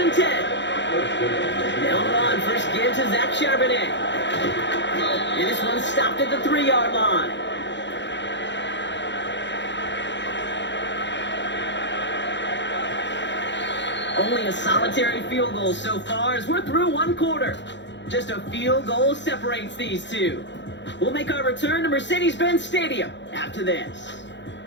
10. They'll run, first give to Zach Charbonnet. And this one stopped at the 3-yard line. Only a solitary field goal so far as we're through one quarter. Just a field goal separates these two. We'll make our return to Mercedes-Benz Stadium after this.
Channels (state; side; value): late; right; 0.52 ms